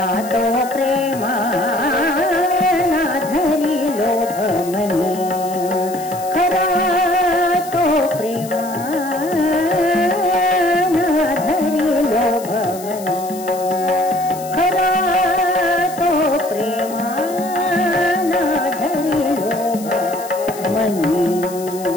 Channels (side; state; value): left; noise; hiss, 16 dB below the sound